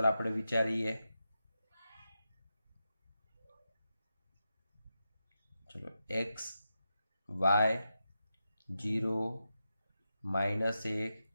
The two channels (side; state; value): both; inverted; correlation -0.89